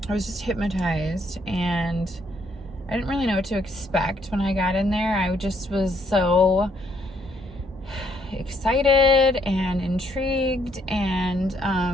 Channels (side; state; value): both; normal; correlation 0.70